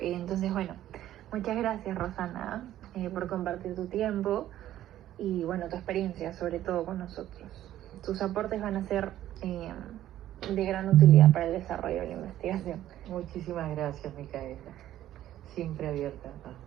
entonces bueno, muchas gracias Rosana por compartir tu tiempo y bueno, tu experiencia sobre todo con nosotros. Tus aportes van a ser de gran utilidad para el desarrollo de la investigación. Muchísimas gracias, Micaela. Siempre abierta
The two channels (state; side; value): quieter; left; 12.8 dB